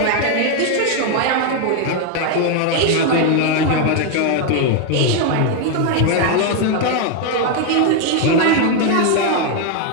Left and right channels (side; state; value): both; different; correlation 0.01